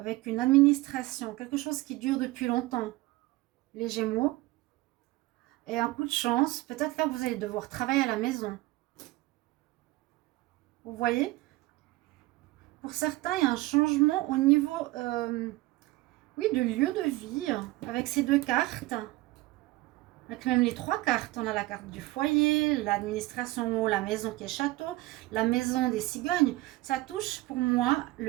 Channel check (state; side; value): quieter; left; 19.3 dB